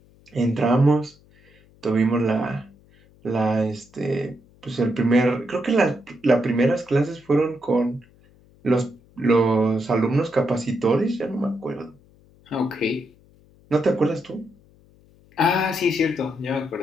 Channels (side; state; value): left; noise; hum, 29 dB below the sound